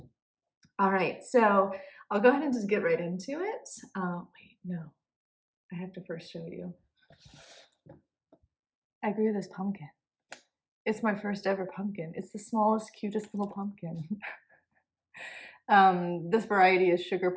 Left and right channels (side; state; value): both; identical; correlation 1.00